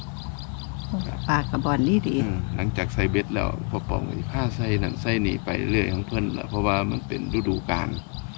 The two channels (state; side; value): quieter; right; 37.2 dB